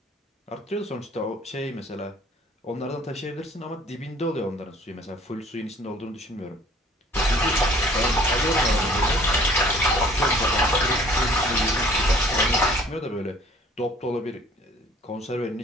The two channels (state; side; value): normal; both; correlation 0.54